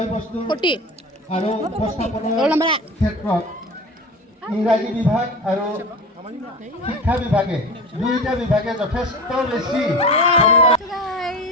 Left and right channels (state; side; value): normal; both; correlation 0.31